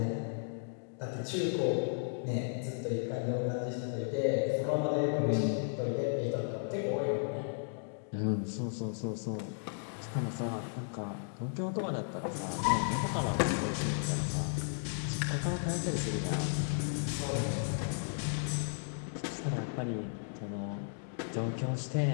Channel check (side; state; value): right; silent; digital silence